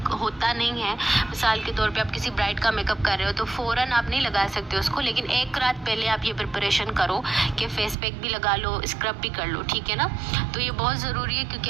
होता नहीं है। मिसाल के तौर पे आप किसी ब्राइड का मेकअप कर रहे हो तो फ़ौरन आप नहीं लगा सकते उसको, लेकिन एक रात पहले आप ये प्रिपरेशन करो कि फेस पैक भी लगा लो, स्क्रब भी कर लो, ठीक है ना। तो ये बहुत ज़रूरी है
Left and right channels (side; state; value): left; drops out; at 8.0 s